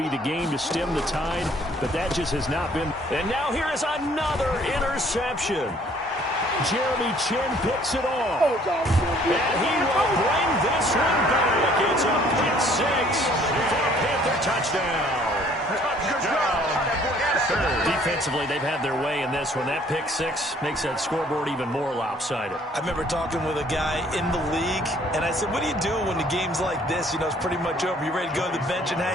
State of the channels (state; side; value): normal; both; correlation 0.59